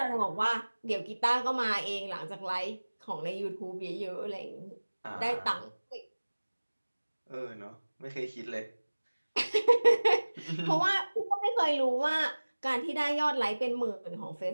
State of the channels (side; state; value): both; inverted; correlation -1.00